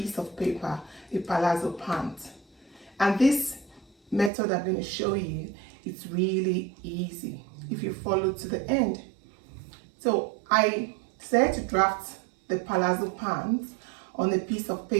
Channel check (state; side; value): drops out; left; at 4.3 s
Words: of paper a palazzo pant. And this method I'm going to show you, it's really easy if you follow to the end. So I decided to draft the palazzo pants on a piece of